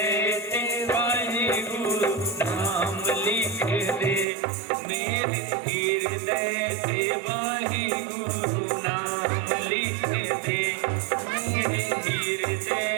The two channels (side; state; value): left; drops out; at 4.2 s